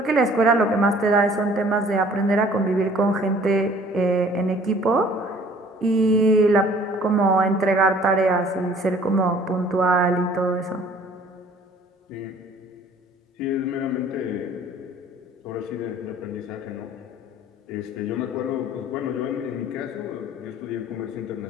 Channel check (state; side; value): normal; both; correlation 0.53